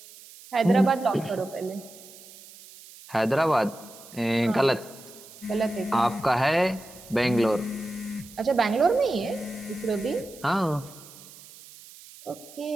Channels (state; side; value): noise; right; hiss, 19 dB below the sound